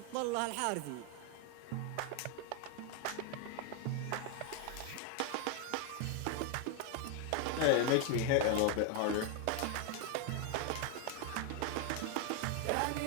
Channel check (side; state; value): both; different; correlation 0.01